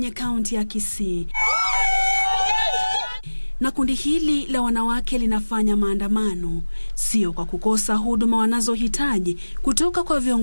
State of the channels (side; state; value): both; inverted; correlation -1.00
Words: kaunti ya Kisii. Na kundi hili la wanawake linafanya maandamano, sio kwa kukosa huduma wanazohitaji kutoka kwa